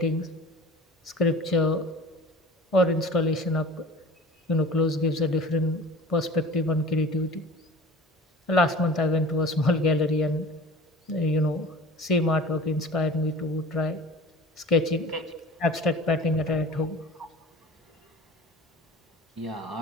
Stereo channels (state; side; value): normal; both; correlation 0.41